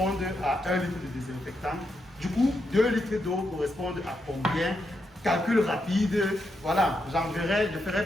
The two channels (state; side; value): normal; both; correlation 0.83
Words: à 1 litre de désinfectant, du coup, 2 litres d'eau correspondent à combien? Calcul rapide, voilà, je ferai